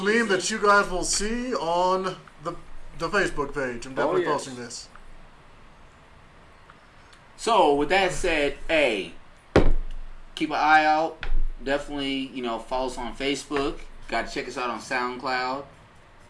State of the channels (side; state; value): both; identical; correlation 1.00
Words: that you guys will see on the Facebook page. I'm definitely yes. posting this. So with that said, hey, keep an eye out. Definitely, follow us on Facebook. Got to check us out on SoundCloud.